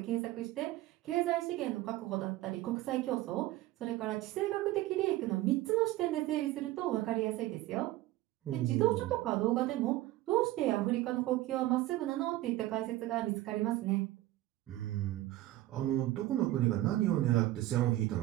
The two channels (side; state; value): left; quieter; 16.1 dB